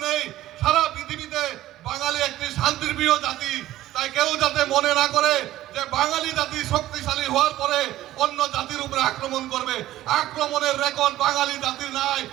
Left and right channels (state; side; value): quieter; left; 14.7 dB